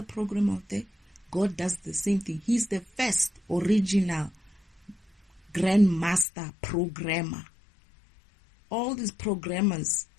program out there, God does the same thing. He's the first original grandmaster programmer. All these programmers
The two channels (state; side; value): drops out; right; at 6.2 s